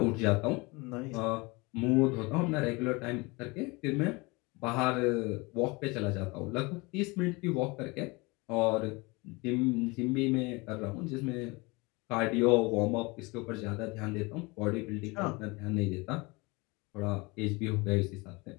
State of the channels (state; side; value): quieter; right; 25.7 dB